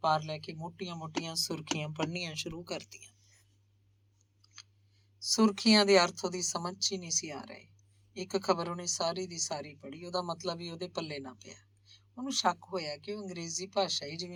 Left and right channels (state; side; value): identical; both; correlation 1.00